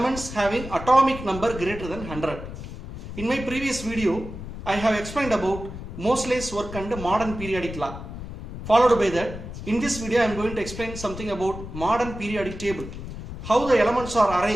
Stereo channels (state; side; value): noise; left; rumble, 10 dB below the sound